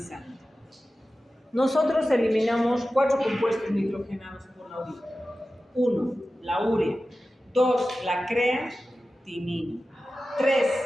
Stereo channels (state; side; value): normal; both; correlation 0.94